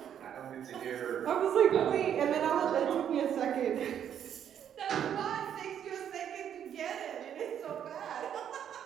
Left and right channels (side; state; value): left; quieter; 9.3 dB